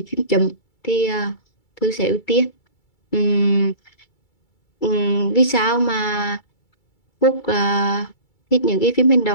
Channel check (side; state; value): right; late; 2.3 ms